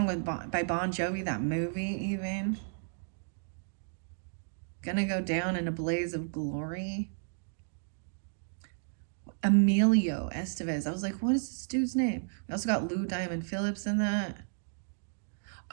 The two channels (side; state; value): left; silent; digital silence